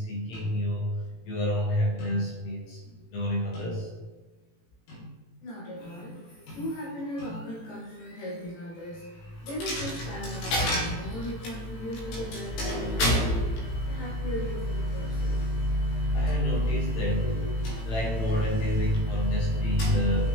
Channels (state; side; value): late; right; 18 ms